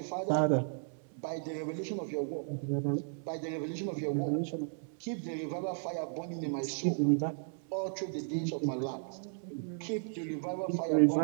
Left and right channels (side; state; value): left; silent; digital silence